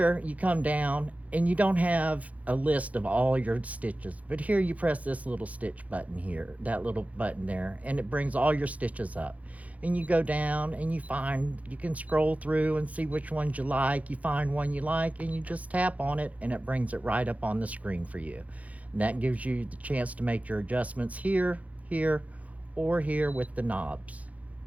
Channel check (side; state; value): left; late; 0.069 ms